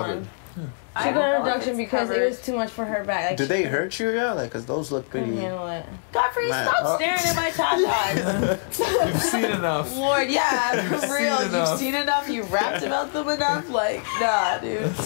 one. I She don't got a know if reduction it's because it covered. was too much for her back. Like, Do she they hurt you, yeah? Like, cause those look couldn't pretty. handle it. Godfrey, Man, stop staring at my tatas. You've seen enough. Lord, yeah, You've for seen real. You've enough. seen enough. You rapped about them enough. Like, nah, dude.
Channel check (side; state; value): right; silent; digital silence